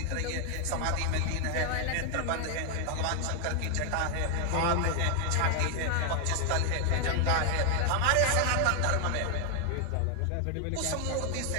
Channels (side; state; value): both; different; correlation 0.00